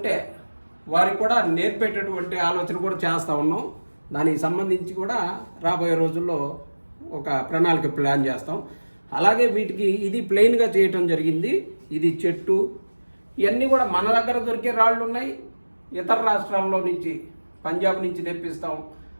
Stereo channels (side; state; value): both; inverted; correlation -1.00